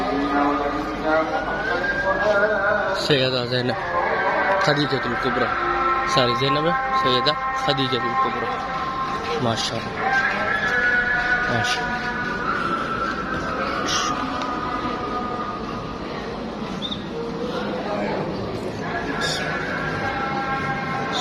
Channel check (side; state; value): both; identical; correlation 1.00